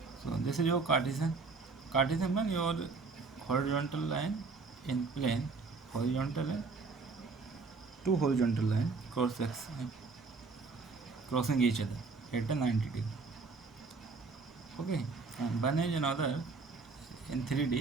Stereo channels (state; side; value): quieter; left; 4.3 dB